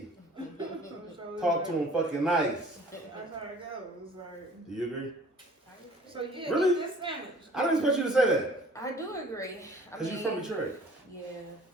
So Talk to him fucking nice. That's how it goes. Like, Do you agree? so yeah, Really? eat this sandwich. I didn't expect you to say that. I do agree. Because you're from Detroit. Yeah,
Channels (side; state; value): both; normal; correlation 0.52